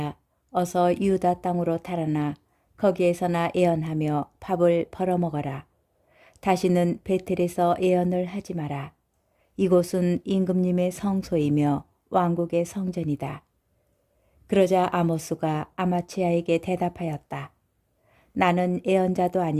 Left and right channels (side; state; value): both; identical; correlation 1.00